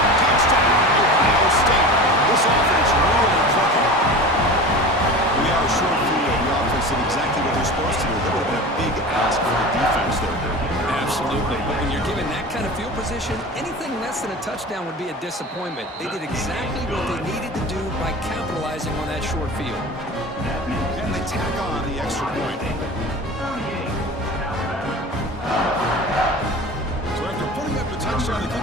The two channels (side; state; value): both; normal; correlation 0.34